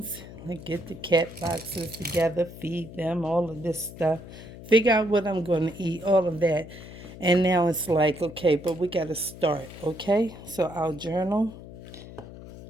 like get the cat boxes together, feed them, all of this stuff, figure out what I'm going to eat, all of that. And now it's like, okay, but we got to start, okay? So, our journal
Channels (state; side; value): noise; left; hum, 15 dB below the sound